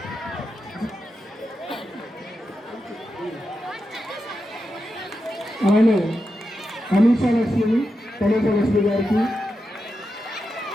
అలానే అనీషా లక్ష్మి లక్ష్మి గారికి,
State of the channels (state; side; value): normal; both; correlation 0.88